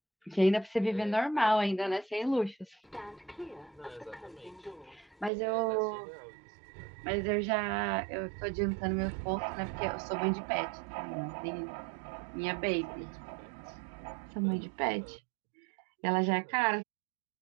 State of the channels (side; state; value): left; drops out; at 5.3 s